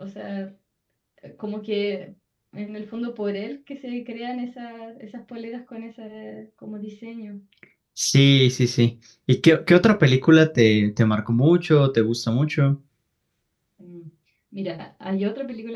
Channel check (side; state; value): both; identical; correlation 1.00